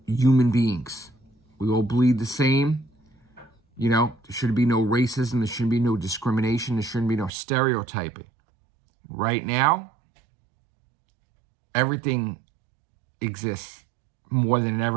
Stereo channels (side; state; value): left; drops out; at 7.3 s